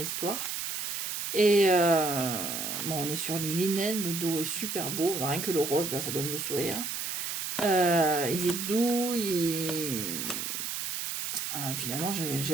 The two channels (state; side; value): noise; right; hiss, 3 dB below the sound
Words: Et bon, on est sur du linen, le dos est super beau, rien que le rose là, ça donne le sourire. Il est doux, finalement j'ai